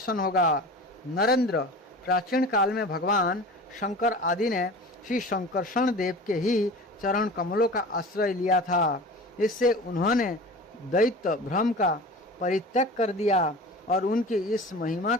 होगा। नरेंद्र, प्राचीन काल में भगवान शंकर आदि ने श्री शंकरषण देव के ही चरण कमलों का आश्रय लिया था। इससे उन्होंने दैत्य भ्रम का परित्याग कर दिया और उनकी इस महिमा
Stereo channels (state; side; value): normal; both; correlation 0.36